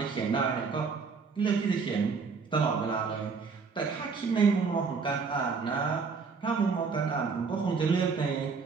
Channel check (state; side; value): quieter; left; 5.1 dB